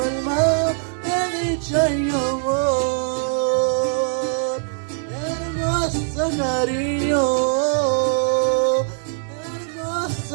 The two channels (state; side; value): silent; left; 64 dB below the other